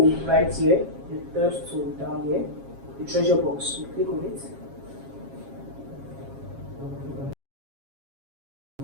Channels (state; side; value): late; left; 7.4 ms